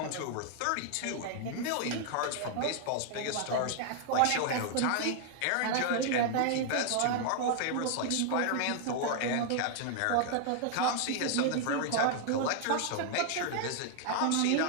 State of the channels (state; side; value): different; both; correlation 0.00